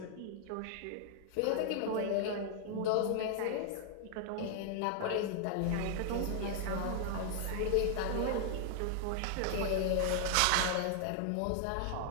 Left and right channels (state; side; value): different; both; correlation 0.00